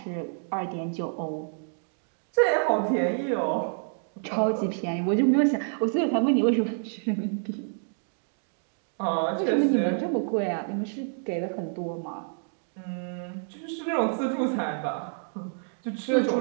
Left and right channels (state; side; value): silent; left; digital silence